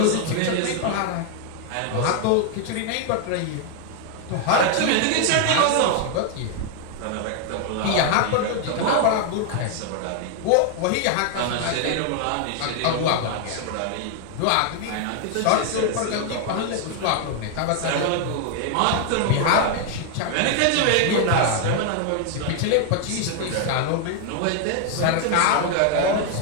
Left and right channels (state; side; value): different; both; correlation 0.00